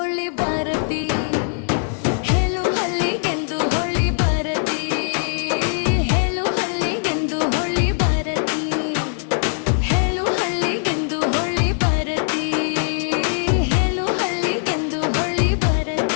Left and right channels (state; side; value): silent; right; digital silence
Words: ಬರತಿ ಹೇಳು ಹಳ್ಳಿಗೆಂದು ಹೊಳ್ಳಿ ಬರತಿ ಹೇಳು ಹಳ್ಳಿಗೆಂದು ಹೊಳ್ಳಿ ಬರತಿ ಹೇಳು ಹಳ್ಳಿಗೆಂದು ಹೊಳ್ಳಿ ಬರತಿ ಹೇಳು ಹಳ್ಳಿಗೆಂದು ಹೊಳ್ಳಿ